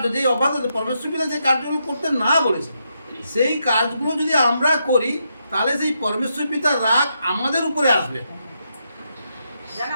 যে অবাধ্যতা পরমেশ্বর পিতা যে কার্যগুলো করতে না বলেছে, সেই কাজগুলো যদি আমরা করি তাহলে সেই পরমেশ্বর পিতার রাগ আমাদের উপরে আসবে।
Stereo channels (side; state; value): both; inverted; correlation -0.81